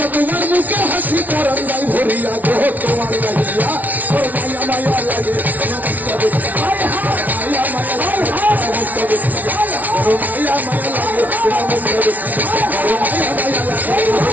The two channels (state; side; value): late; left; 0.077 ms